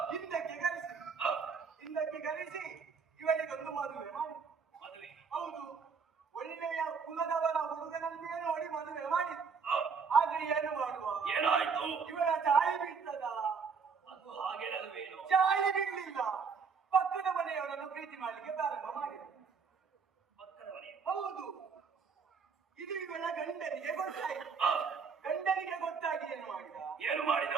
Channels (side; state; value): left; quieter; 5.7 dB